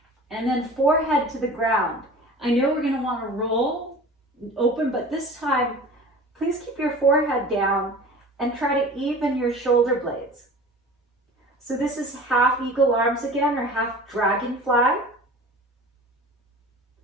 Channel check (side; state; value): both; normal; correlation 0.40